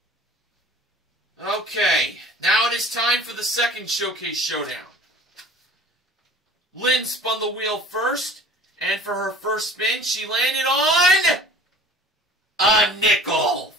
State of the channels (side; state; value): both; normal; correlation 0.45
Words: Okay, now it is time for the second showcase showdown. Lynn spun the wheel first, and for her first spin, she landed on a nickel,